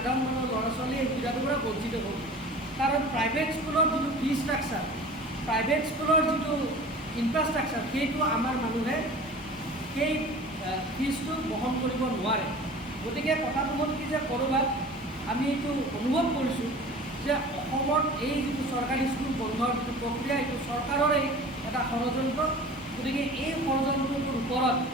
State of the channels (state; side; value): normal; both; correlation 0.41